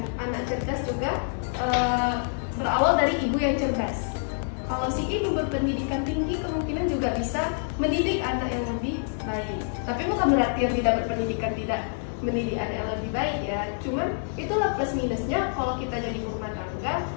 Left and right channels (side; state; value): right; silent; digital silence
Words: anak cerdas juga berawal dari ibu yang cerdas. Kalau si ibu berpendidikan tinggi, kemungkinan juga bisa mendidik anak yang lebih baik. Tapi bukan berarti yang tidak berpendidikan tidak mendidik anak yang lebih baik ya. Cuman itulah plus minusnya kalau kita jadi rumah tangga,